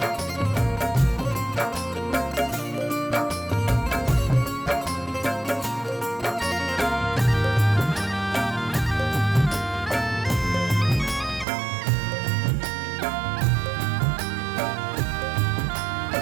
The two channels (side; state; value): left; drops out; at 11.5 s